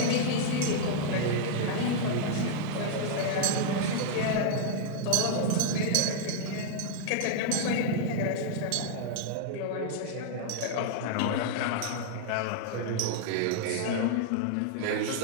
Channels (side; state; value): both; different; correlation -0.01